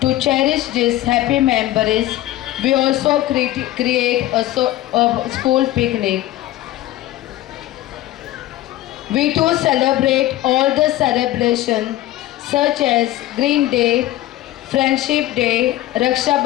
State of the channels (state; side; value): quieter; right; 15.0 dB